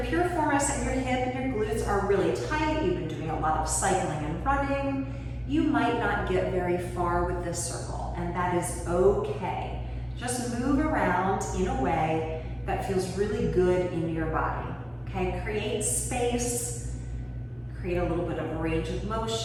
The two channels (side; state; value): both; identical; correlation 1.00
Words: your piriformis and your hip and your glutes are really tight, you've been doing a lot of cycling and running, you might not get very far with this circle, and that is okay. Just move around in a way that feels really good in your body, okay? Create space, create a little bit of range of